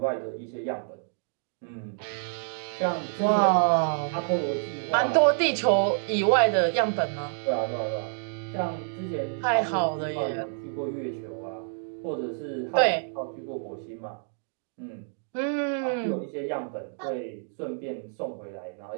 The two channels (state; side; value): silent; left; digital silence